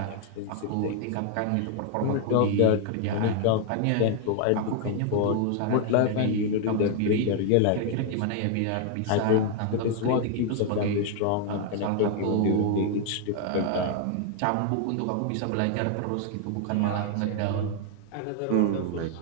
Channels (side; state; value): both; different; correlation 0.00